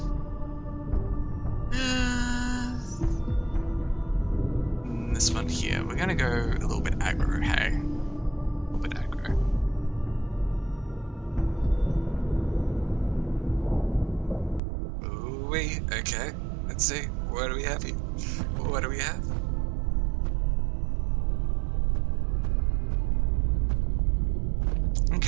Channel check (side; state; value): left; drops out; at 14.6 s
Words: This one here. We're going to go a little bit aggro, hey? A little bit aggro. Ooh, okay. Let's see. What do we have here? What do we have?